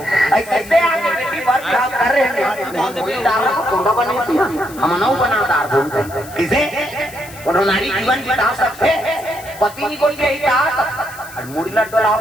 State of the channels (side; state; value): left; noise; hiss, 18 dB below the sound